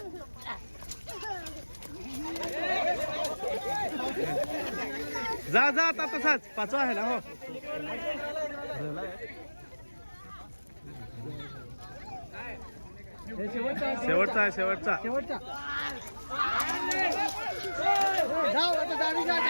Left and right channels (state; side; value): inverted; both; correlation -1.00